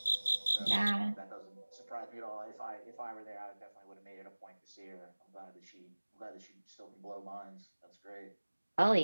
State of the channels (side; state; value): both; inverted; correlation -1.00